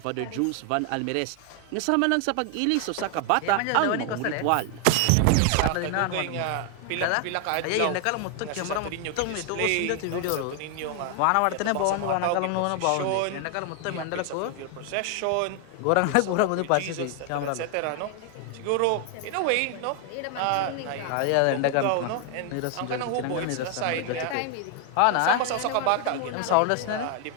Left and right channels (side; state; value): both; different; correlation 0.00